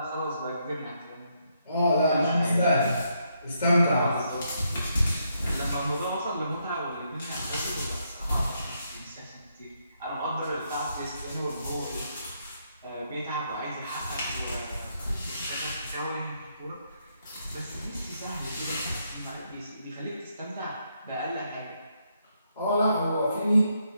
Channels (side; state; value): both; inverted; correlation -0.77